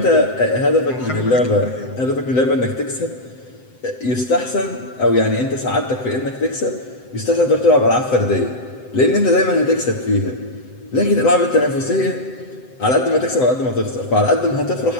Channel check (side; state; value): right; late; 7.8 ms